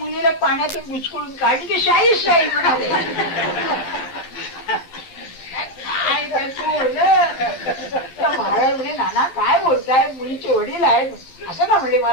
पाण्यातून बुचकळून काढली की शाही शाही म्हणाले. महाराज म्हणे नाना काय बोलताय, मुलीचे वडील आहेत. असं का म्हणले,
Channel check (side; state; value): right; late; 11 ms